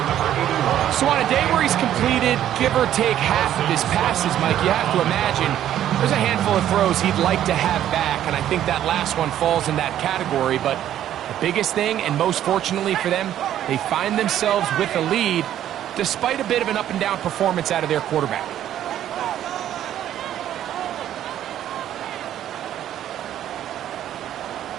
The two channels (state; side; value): quieter; left; 11.4 dB